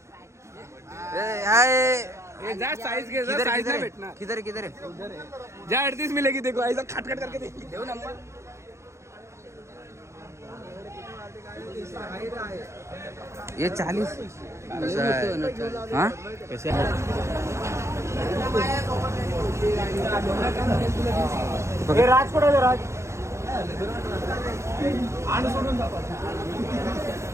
जा साइज घे. जा साइज नाही भेटणार. किधर है जा 38 मिलेगी. देखो ऐसा खट खट करके देव नंबर. ये 40 हाँ कैसे राज कुठे आहे राज?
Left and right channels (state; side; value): late; left; 0.14 ms